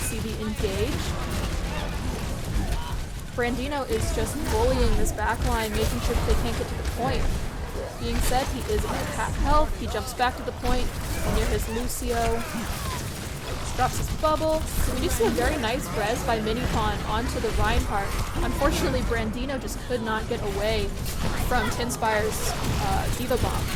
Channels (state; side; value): identical; both; correlation 1.00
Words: the engage. Brandino is just bullying this backline, making sure that they can't get to the point. Being said, he is about half health. He jumps back to the point to be near his Lucio. Drops his bubble. We do see a very nice res by Minipawn onto the Reinhardt. Unfortunately, Brandino just could not get away from TINSPIRE's Diva Bomb.